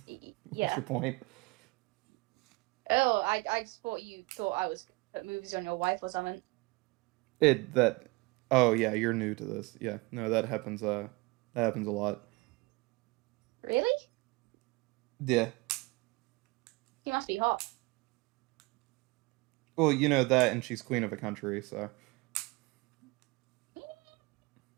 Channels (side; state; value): left; quieter; 24.6 dB